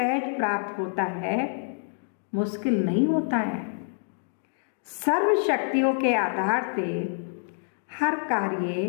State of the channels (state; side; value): silent; right; digital silence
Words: प्राप्त होता है, मुश्किल नहीं होता है। सर्व शक्तियों के आधार से हर कार्य